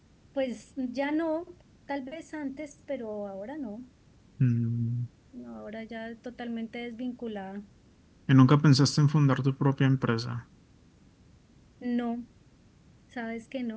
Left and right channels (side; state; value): both; identical; correlation 1.00